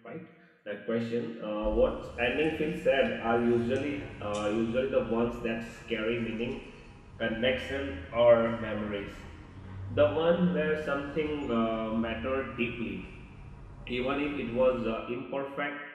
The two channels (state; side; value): identical; both; correlation 1.00